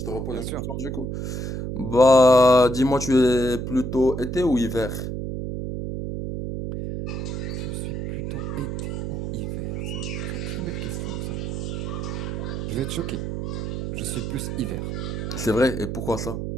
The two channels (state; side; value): noise; right; hum, 4 dB below the sound